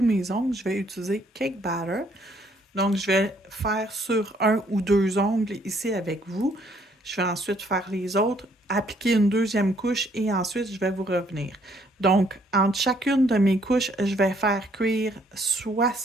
mes ongles. Je vais utiliser Cake Batter. Donc, je vais faire sur un ou deux ongles ici avec vous. Je vais ensuite faire les autres, appliquer une deuxième couche et ensuite, je vais vous revenir. Donc, entre chacune de mes couches, je vais faire cuire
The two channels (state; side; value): normal; both; correlation 0.66